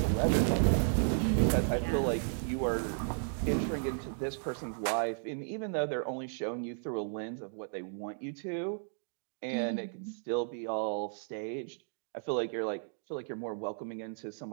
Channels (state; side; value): silent; left; digital silence